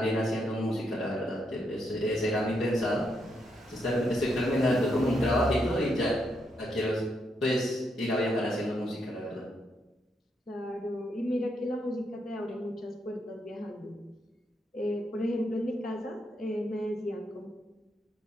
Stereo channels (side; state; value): both; normal; correlation 0.79